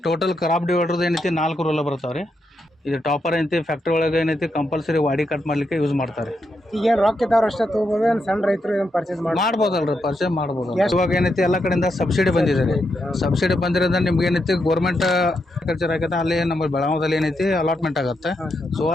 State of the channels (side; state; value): both; normal; correlation 0.82